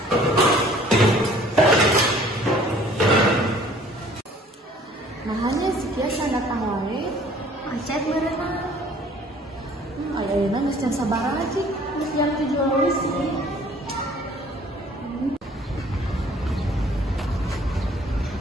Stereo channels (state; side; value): normal; both; correlation 0.54